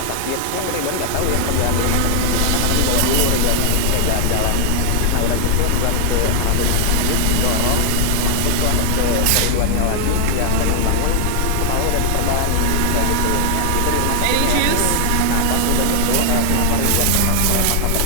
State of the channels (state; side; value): different; both; correlation 0.00